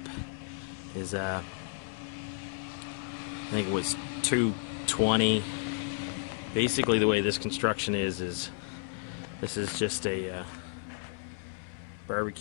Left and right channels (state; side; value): silent; right; 56 dB below the other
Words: is I think it was $2.20. Basically the way this construction is this is just a